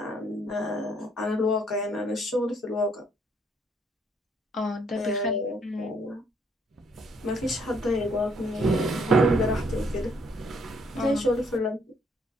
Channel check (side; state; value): both; normal; correlation 0.68